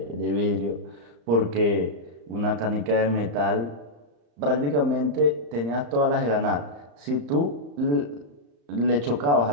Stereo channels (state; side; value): late; left; 34 ms